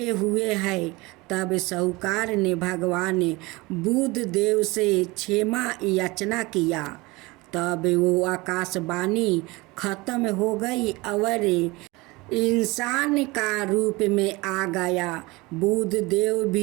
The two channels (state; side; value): quieter; left; 23.1 dB